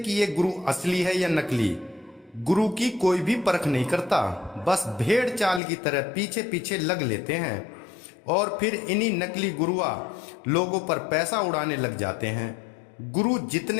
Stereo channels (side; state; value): right; drops out; at 5.6 s